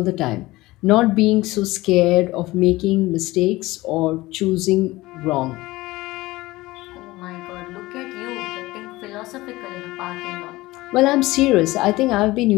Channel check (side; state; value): right; quieter; 19.4 dB